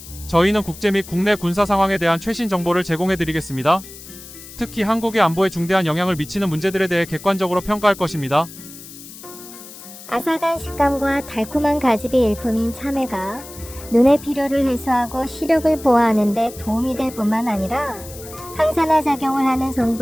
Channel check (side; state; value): left; noise; hiss, 16 dB below the sound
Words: 저희는 국제 및 국내 군사 상황에 대한 최신 정보를 제공해드리겠습니다. 특히 한국의 안보에 중대한 영향을 미치는 문제들에 대해 객관적으로 평가할 것입니다. 아삭한 식감과 달콤한 가집이 일품인 참외가 눈의 피로를 해소하고 시력을 보호하는 데 도움이 될 뿐만 아니라 항산화 작용을 하는